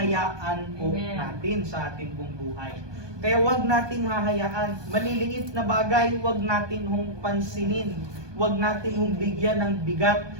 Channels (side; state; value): left; late; 1.2 ms